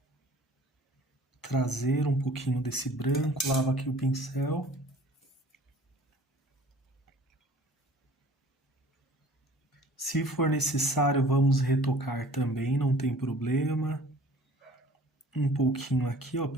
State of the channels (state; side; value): normal; both; correlation 0.49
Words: trazer um pouquinho desse branco. Lavo aqui o pincel. Se for necessário, vamos retocar também, não tem problema. Um pouquinho aqui, ó,